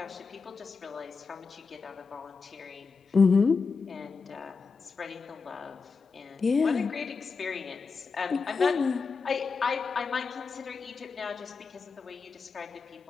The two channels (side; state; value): right; quieter; 4.8 dB